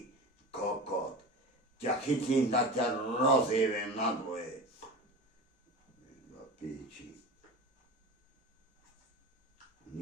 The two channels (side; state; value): both; normal; correlation 0.30